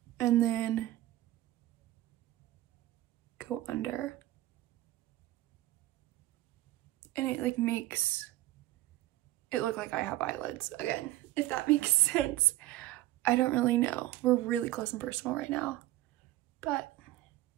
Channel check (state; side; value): quieter; left; 16.0 dB